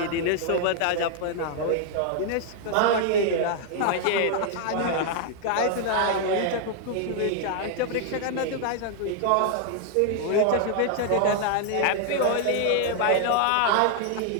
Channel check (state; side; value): different; both; correlation 0.00